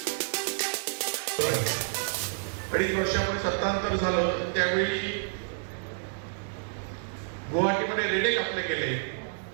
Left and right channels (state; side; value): silent; left; digital silence